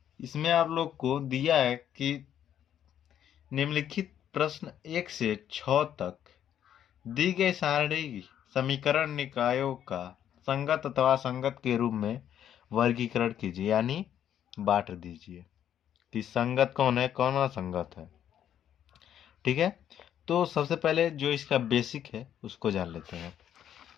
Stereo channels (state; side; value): quieter; right; 10.1 dB